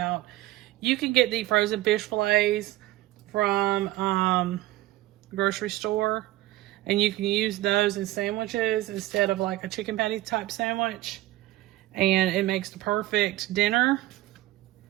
You can get the frozen fish fillets from the grocery store and you can use those in sandwiches instead of like a chicken patty type sandwich, and it makes the perfect dinner.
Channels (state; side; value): quieter; left; 16.6 dB